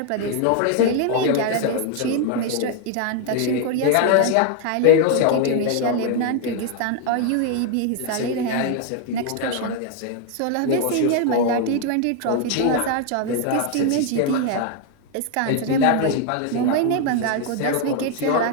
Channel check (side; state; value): both; different; correlation 0.00